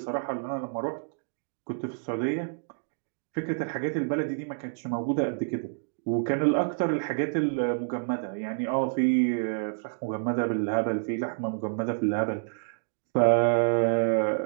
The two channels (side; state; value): left; silent; digital silence